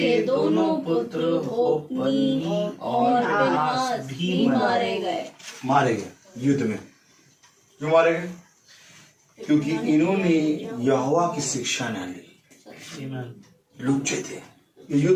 दोनों पुत्र होप्नी और फिनहास भी मारे गए। मारे गए युद्ध में। क्यों मारे गए? क्योंकि इन्होंने यहोवा की शिक्षा न ली। Amen. लुच्चे थे, ये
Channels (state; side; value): identical; both; correlation 1.00